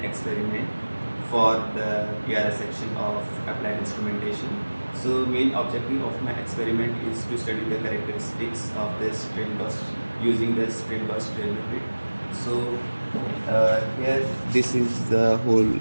experiment for the PRS section of applied instrumentation. So main objective of my experiment is to study the characteristics of the strain gauge using the strain gauge strain limit. So here this is the whole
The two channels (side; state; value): both; inverted; correlation -1.00